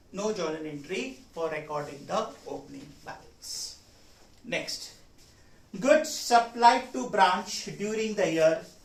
No journal entry for recording the opening balance. Next, goods supplied to branch during the year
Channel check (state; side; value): identical; both; correlation 1.00